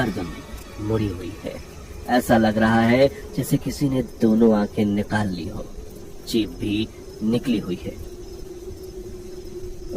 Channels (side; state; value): both; identical; correlation 1.00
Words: मुड़ी हुई है, ऐसा लग रहा है जैसे किसी ने दोनों आंखें निकाल ली हो। जीभ भी निकली हुई है।